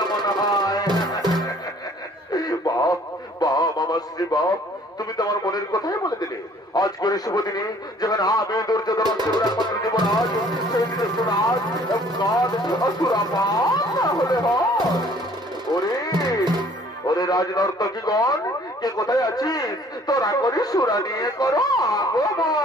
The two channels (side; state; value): both; normal; correlation 0.56